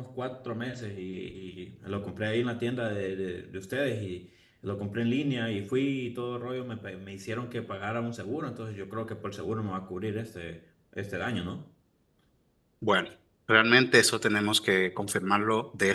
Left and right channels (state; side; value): identical; both; correlation 1.00